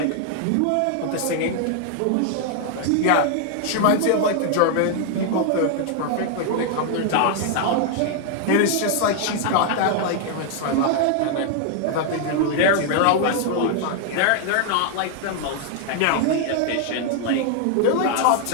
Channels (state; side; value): different; both; correlation 0.00